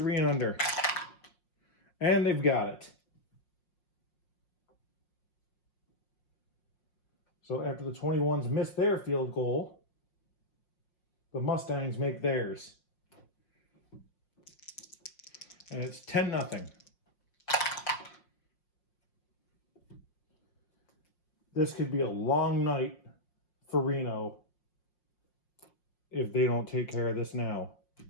and under. And they've got it. So after the 21s miss their field goal, the Mustangs make theirs. And it's 10-0. This could be a long night for Reno if they don't take care of this now.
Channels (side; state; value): right; late; 5.6 ms